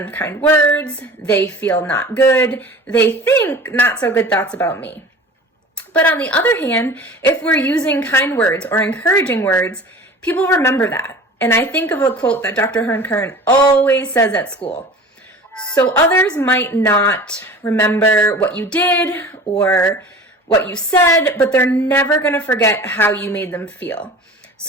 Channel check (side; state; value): both; normal; correlation 0.40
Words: words, they feel not good, they think not so good thoughts about me. But on the other hand, if we're using kind words or encouraging words, people remember that. And I think of a quote that Dr. Hearn Kern always says at school. So others might not remember what you did or what you said, but they're never going to forget how you made them feel.